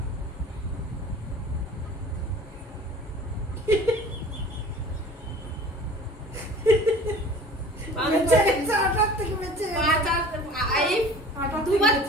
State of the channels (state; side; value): normal; both; correlation 0.44